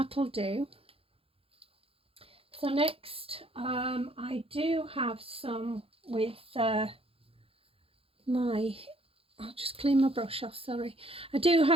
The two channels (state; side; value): late; left; 0.27 ms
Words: do. So next, I do have some with I'll just clean my brush off, sorry. I do